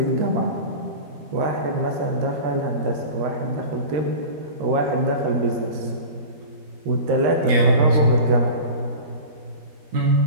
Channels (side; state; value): left; late; 13 ms